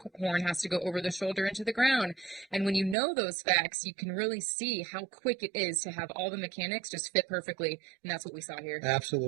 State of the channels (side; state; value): left; drops out; at 3.0 s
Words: horn has to go over the shoulder into the ground. And when you know those facts, you can really see how quick it is to have all the mechanics just fit perfectly, and that's what we saw here.